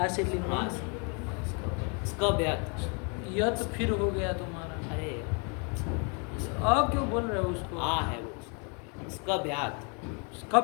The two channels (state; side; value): quieter; right; 35.5 dB